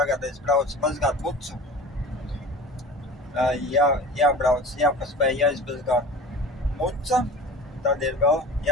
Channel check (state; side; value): normal; both; correlation 0.38